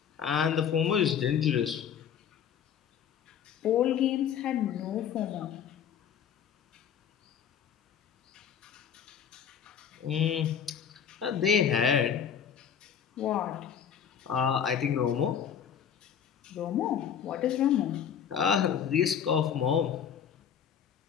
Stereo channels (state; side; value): quieter; right; 8.2 dB